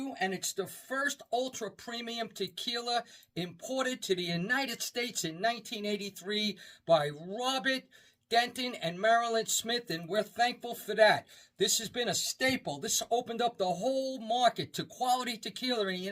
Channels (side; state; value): both; identical; correlation 1.00